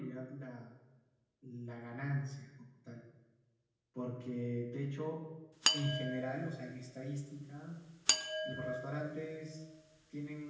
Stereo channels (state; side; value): identical; both; correlation 1.00